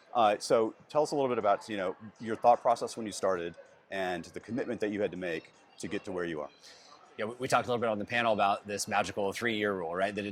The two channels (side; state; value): both; identical; correlation 1.00